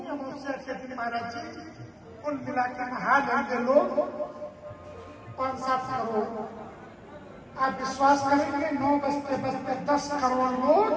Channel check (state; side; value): identical; both; correlation 1.00